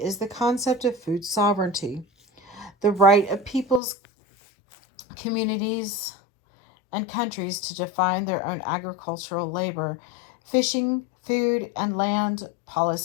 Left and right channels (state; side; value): drops out; right; at 3.8 s